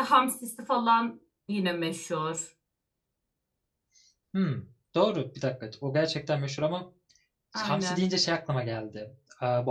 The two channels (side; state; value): both; identical; correlation 1.00